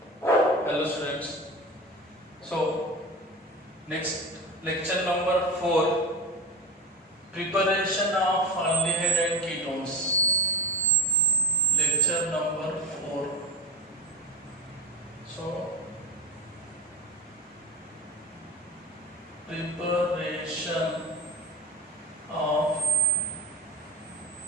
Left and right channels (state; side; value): normal; both; correlation 0.22